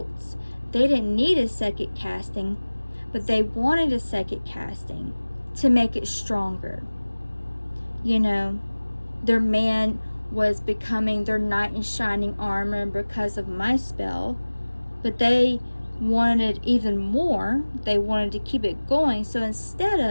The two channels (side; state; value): both; inverted; correlation -1.00